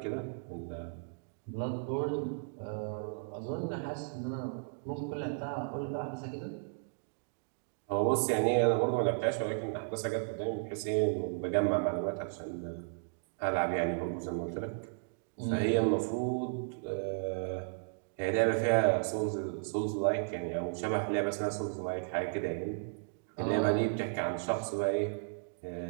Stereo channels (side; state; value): left; silent; digital silence